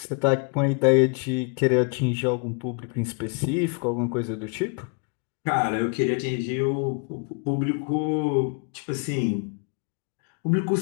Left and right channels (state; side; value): quieter; right; 37.6 dB